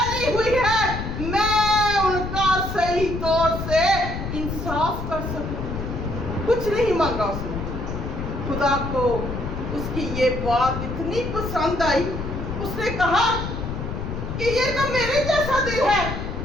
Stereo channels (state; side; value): noise; left; rumble, 5 dB below the sound